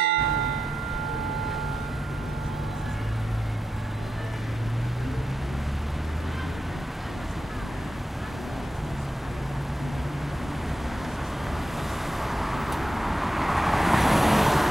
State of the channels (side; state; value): both; normal; correlation 0.87